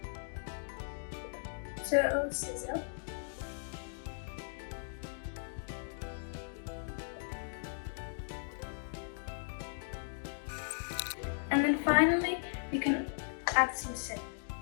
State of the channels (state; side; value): silent; right; digital silence